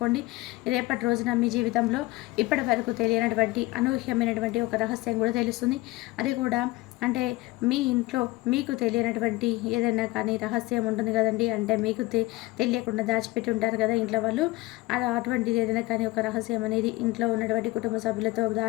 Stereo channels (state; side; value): quieter; right; 20.5 dB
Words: రేపటి రోజున మీ జీవితంలో ఇప్పటి వరకు తెలియనటువంటి అనూహ్యమైనటువంటి ఒక రహస్యం కూడా తెలుస్తుంది. అది కూడా అంటే మీ ఇంట్లో మీకు తెలియనటువంటి ఏదైనా కానీ రహస్యం ఉంటుంది కదండి. అంటే మీకు తెలియకుండా దాచిపెట్టి ఉంటారు కదా ఇంట్లో వాళ్ళు. అటువంటిది ఏదైనా కానీ ఒక రహస్యం అనేది ఇంట్లో ఉన్నటువంటి కుటుంబ సభ్యులతో